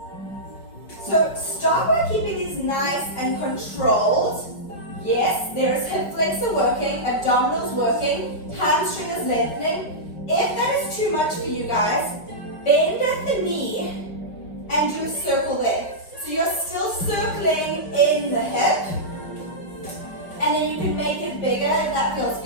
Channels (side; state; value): right; late; 5.1 ms